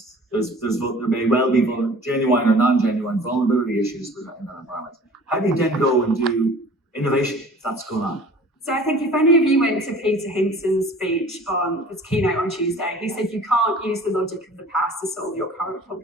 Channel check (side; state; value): both; normal; correlation 0.46